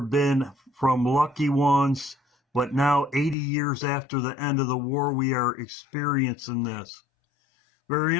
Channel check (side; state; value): right; drops out; at 3.4 s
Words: been from lucky ones, but now 80 years after the end of the war, we are experiencing this. Very